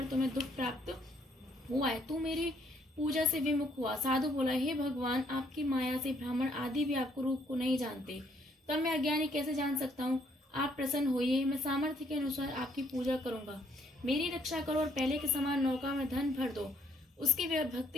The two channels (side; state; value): both; normal; correlation 0.67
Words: तुम्हें दुख प्राप्त हुआ है, तू मेरी पूजा से विमुख हुआ। साधु बोला, हे भगवान, आपकी माया से ब्राह्मण आदि भी आपको रूप को नहीं जानते, तब मैं अज्ञानी कैसे जान सकता हूँ? आप प्रसन्न होइए, मैं सामर्थ्य के अनुसार आपकी पूजा करूंगा। मेरी रक्षा करो और पहले के समान नौका में धन भर दो। उसके